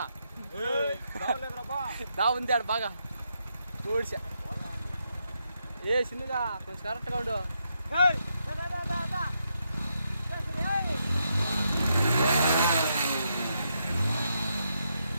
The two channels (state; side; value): inverted; both; correlation -0.80